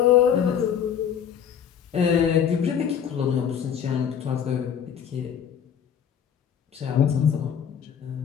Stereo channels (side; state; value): right; quieter; 8.3 dB